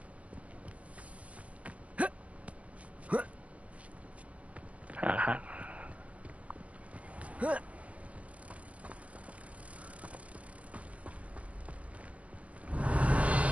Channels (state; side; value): late; left; 0.065 ms